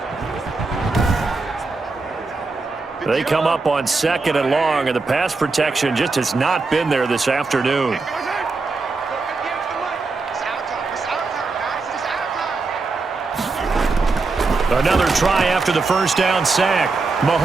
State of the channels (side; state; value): left; quieter; 3.9 dB